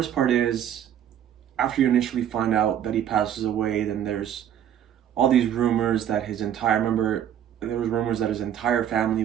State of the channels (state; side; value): quieter; left; 10.1 dB